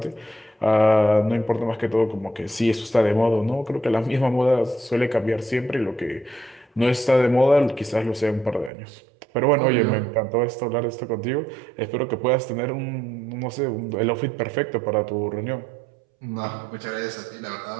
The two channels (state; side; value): drops out; left; at 8.7 s